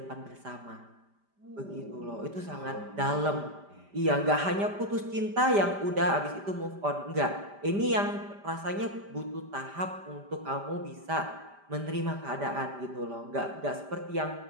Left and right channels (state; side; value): late; left; 5.0 ms